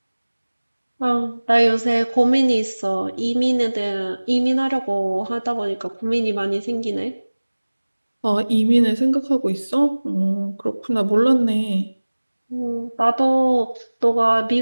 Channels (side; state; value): both; inverted; correlation -1.00